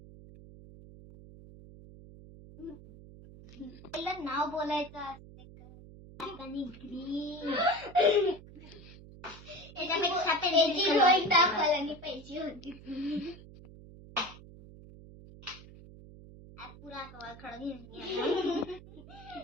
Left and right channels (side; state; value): right; noise; hum, 18 dB below the sound